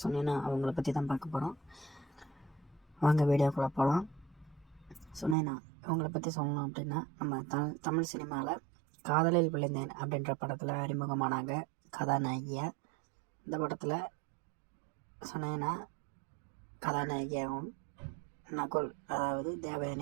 சொன்னீங்கன்னா அவங்கள பற்றி தான் பார்க்க போகிறோம். வாங்க வீடியோக்குள்ளே போகலாம். சொன்னேன்னா இவங்களை பற்றி சொல்லணும் அப்படின்னா, நம்ம தமிழ் சினிமாவில் காதலில் விழுந்தேன் அப்படின்ற படத்தில் அறிமுகமானாங்க கதாநாயகியாக. இந்த படத்தில் சொன்னேன்னா கதாநாயகியாகவும் நகுல், அதாவது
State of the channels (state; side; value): drops out; left; at 5.4 s